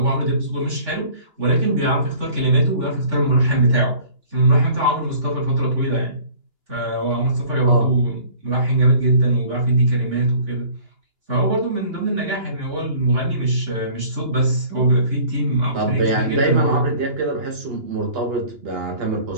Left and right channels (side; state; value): left; late; 2.9 ms